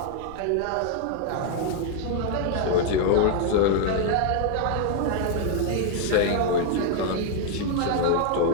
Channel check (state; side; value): different; both; correlation 0.00